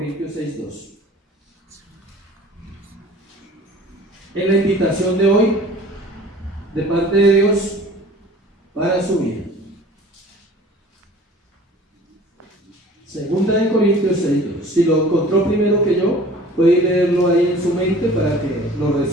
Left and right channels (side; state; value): both; normal; correlation 0.46